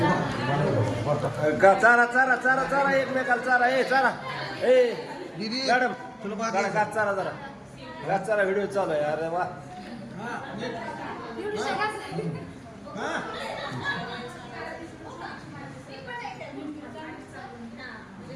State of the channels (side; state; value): both; identical; correlation 1.00